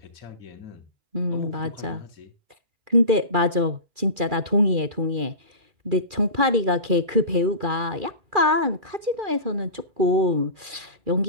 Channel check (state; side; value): late; left; 2.4 ms